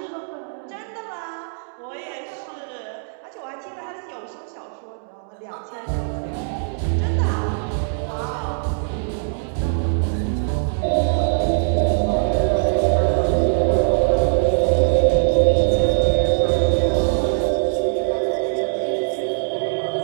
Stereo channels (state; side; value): silent; left; digital silence